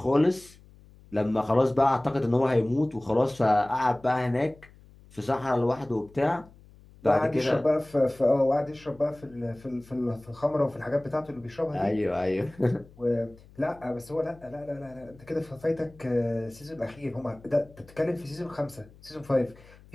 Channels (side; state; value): left; noise; hum, 24 dB below the sound